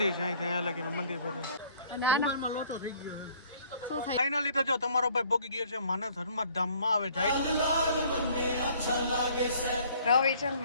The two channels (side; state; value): both; inverted; correlation -0.57